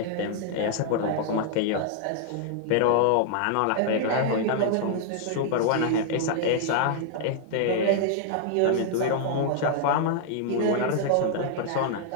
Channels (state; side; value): different; both; correlation -0.01